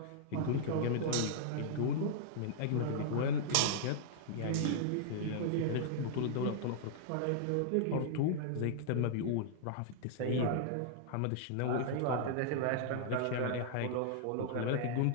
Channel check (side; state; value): both; different; correlation -0.01